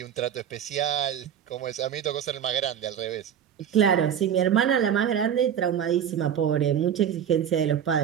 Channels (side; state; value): left; quieter; 9.0 dB